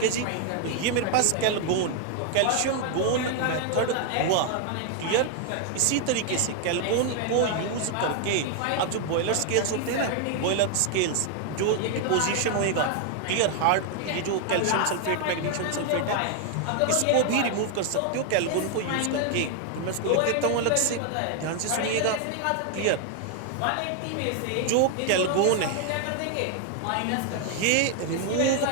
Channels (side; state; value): both; different; correlation 0.00